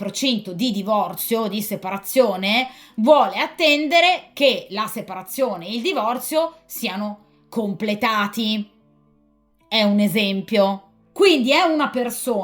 di divorzio, di separazione, vuole attendere che la separazione e il divorzio siano completati. È un esempio. Quindi è una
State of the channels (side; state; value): both; identical; correlation 1.00